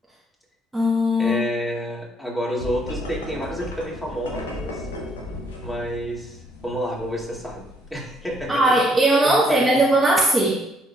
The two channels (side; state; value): both; normal; correlation 0.68